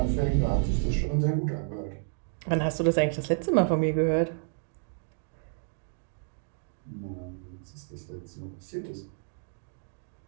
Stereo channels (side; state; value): left; silent; digital silence